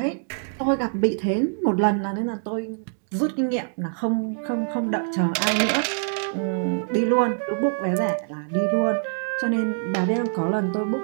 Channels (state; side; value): silent; left; digital silence